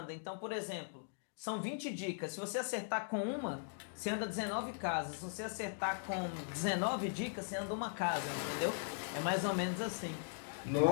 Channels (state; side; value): silent; right; digital silence